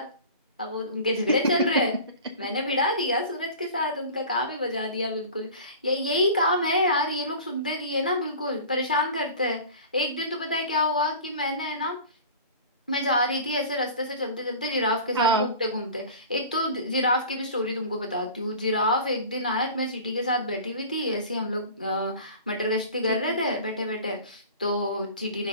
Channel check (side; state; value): both; inverted; correlation -0.39